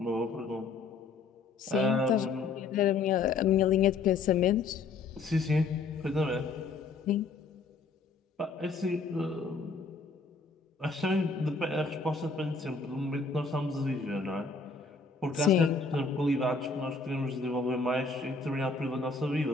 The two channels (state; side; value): quieter; right; 4.3 dB